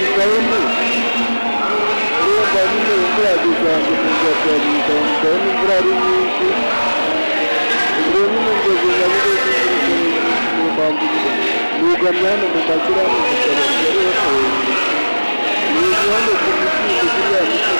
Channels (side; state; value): both; inverted; correlation -1.00